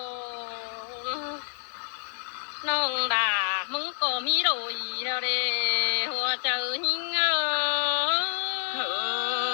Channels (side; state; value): right; silent; digital silence